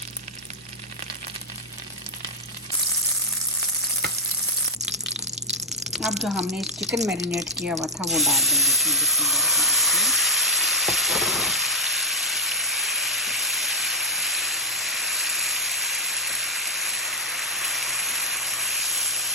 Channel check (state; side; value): normal; both; correlation 0.04